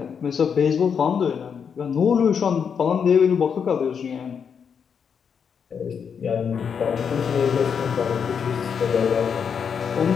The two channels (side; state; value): right; quieter; 6.9 dB